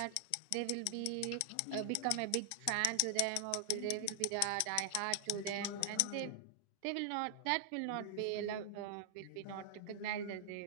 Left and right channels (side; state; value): both; different; correlation 0.00